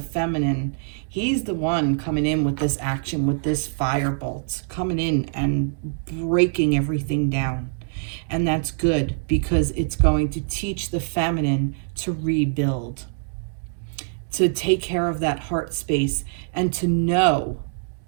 feminine. He's the one coming in with this action, with this firebolt, coming in and breaking everything down. And that's good, because it's going to teach the feminine to rebuild, to take care of that heart space, and to know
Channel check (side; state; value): left; silent; digital silence